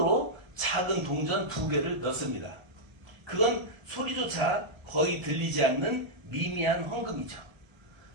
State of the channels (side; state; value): left; late; 1.4 ms